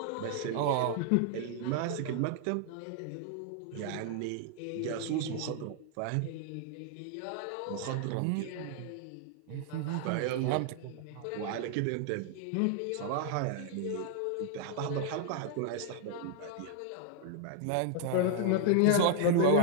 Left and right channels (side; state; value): both; different; correlation 0.00